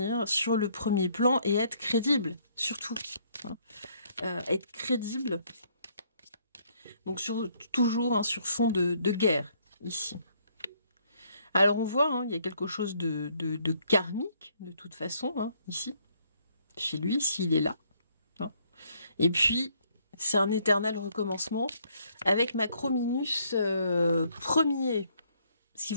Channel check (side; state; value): both; inverted; correlation -0.67